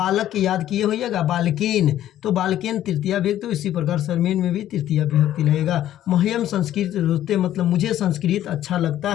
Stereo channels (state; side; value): quieter; right; 12.3 dB